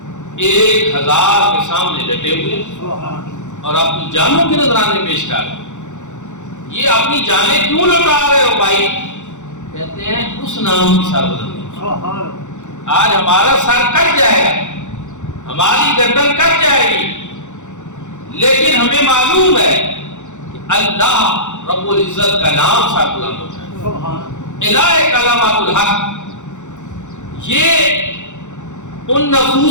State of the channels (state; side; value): late; right; 0.85 ms